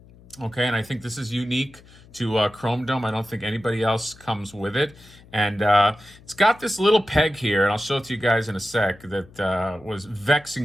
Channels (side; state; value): left; noise; hum, 24 dB below the sound